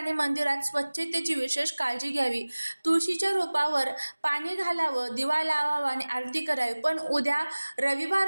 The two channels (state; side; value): inverted; both; correlation -1.00